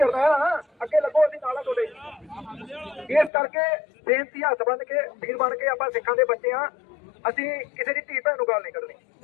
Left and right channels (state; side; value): drops out; right; at 3.3 s